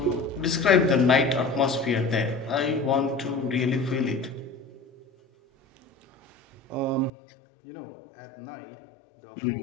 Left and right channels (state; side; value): drops out; right; at 7.1 s